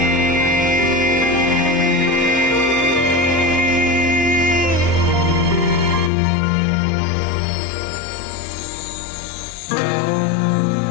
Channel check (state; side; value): drops out; right; at 6.1 s